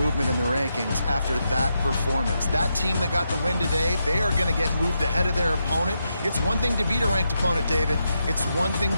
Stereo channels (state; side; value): inverted; both; correlation -0.84